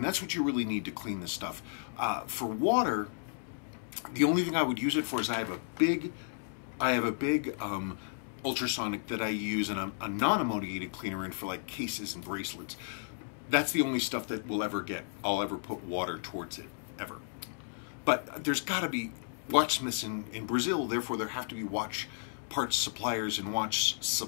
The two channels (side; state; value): right; silent; digital silence